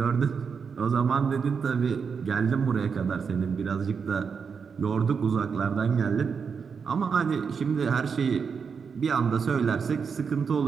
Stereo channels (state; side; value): quieter; left; 6.0 dB